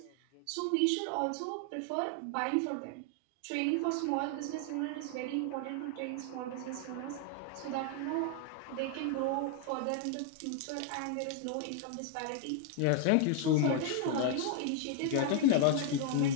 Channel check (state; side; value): different; both; correlation 0.00